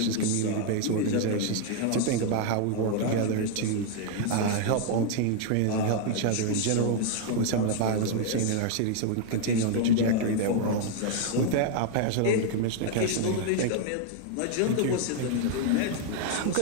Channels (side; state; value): both; different; correlation 0.00